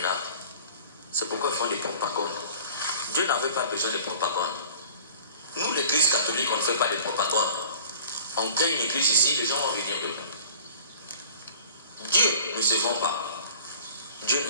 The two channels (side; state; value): both; inverted; correlation -0.45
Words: C'est pourquoi ils font des propagandes. Dieu n'avait pas besoin de propagande. Nous, l'église catholique, on ne fait pas de propagande. On crée une église ici, les gens vont venir dedans. Dieu ne se vend pas. Dieu ne